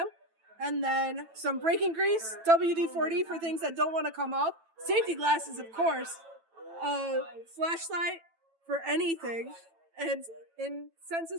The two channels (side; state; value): left; late; 9.0 ms